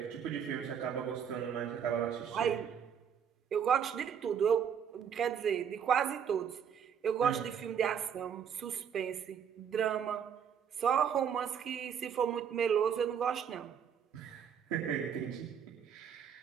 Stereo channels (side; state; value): left; quieter; 7.9 dB